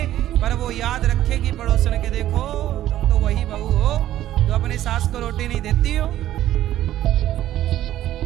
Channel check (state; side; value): quieter; left; 13.1 dB